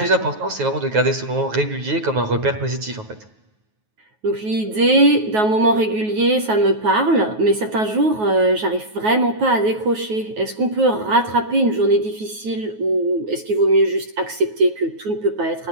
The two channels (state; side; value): late; left; 9.4 ms